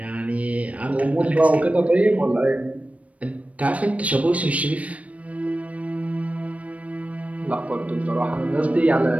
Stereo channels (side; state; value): left; late; 0.066 ms